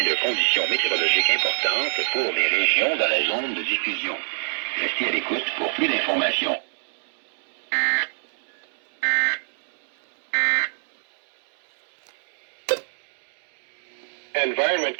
de conditions météorologiques importantes pour les régions dans la zone de diffusion. Restez à l'écoute pour plus d'informations. Environment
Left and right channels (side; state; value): left; silent; digital silence